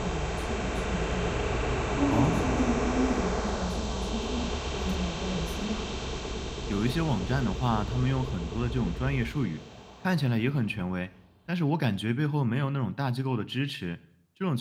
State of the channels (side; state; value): both; identical; correlation 1.00